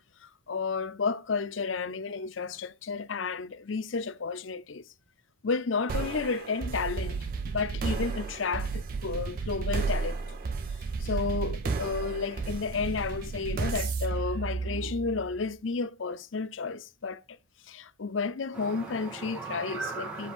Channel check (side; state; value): both; normal; correlation 0.11